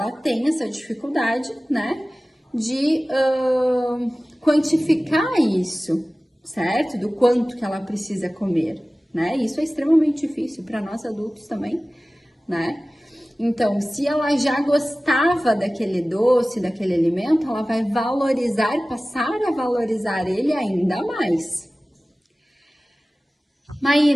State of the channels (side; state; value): both; normal; correlation 0.97